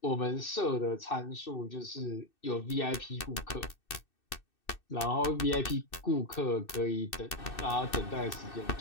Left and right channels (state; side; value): late; right; 2.6 ms